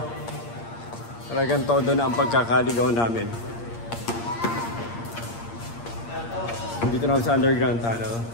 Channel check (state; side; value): late; right; 8.6 ms